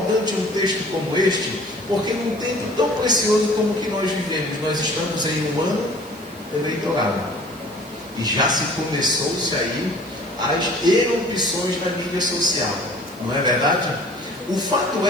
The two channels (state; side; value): noise; right; hiss, 22 dB below the sound